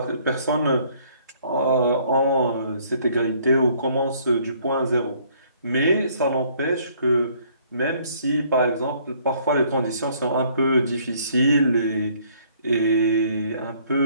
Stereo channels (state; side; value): inverted; both; correlation -0.62